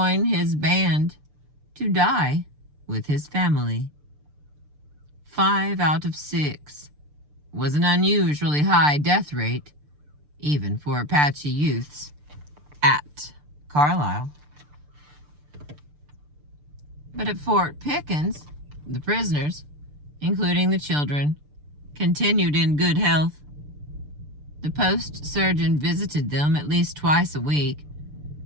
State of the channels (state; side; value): late; left; 6.8 ms